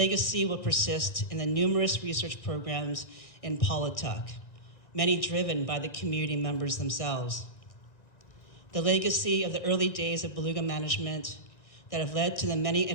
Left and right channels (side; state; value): right; late; 1.9 ms